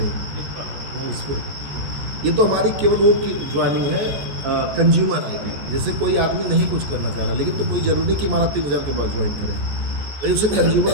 इस इस पे ये तो हमारी केवल वो की ज्वाइनिंग है कंज्यूमर ID। जैसे कोई आदमी नहीं कुछ करना चाह रहा, लेकिन तो कोई ज़रूरी नहीं कि हमारा 3000 के बाद ज्वाइन करे, भाई उसे कंज्यूमर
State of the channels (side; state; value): left; late; 14 ms